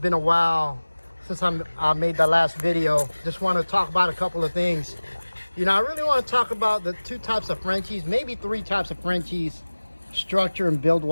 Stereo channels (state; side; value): inverted; both; correlation -1.00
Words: a while since I made that last video. Just want to talk about a couple of things. You know, I really want to talk about the two types of Frenchies, maybe three types of Frenchies, structure and build